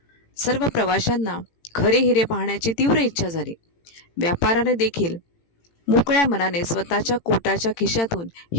सर्व प्रवाशांना खरे हिरे पाहण्याची तीव्र इच्छा झाली. व्यापाऱ्याने देखील मोकळ्या मनाने स्वतःच्या कोटाच्या खिशातून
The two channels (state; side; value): late; right; 18 ms